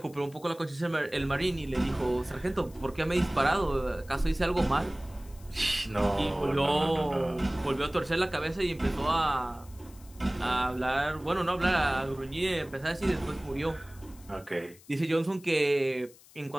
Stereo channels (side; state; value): left; noise; hiss, 24 dB below the sound